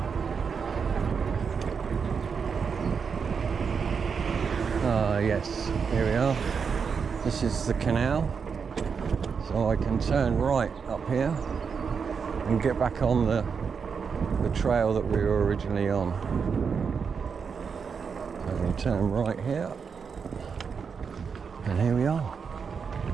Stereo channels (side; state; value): left; quieter; 6.0 dB